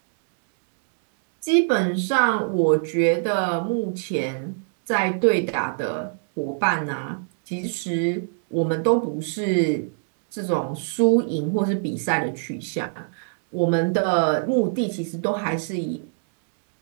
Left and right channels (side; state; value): left; silent; 63 dB below the other